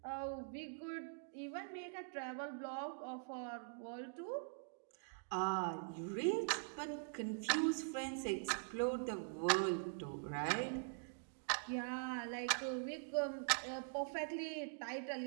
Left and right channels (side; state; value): left; silent; digital silence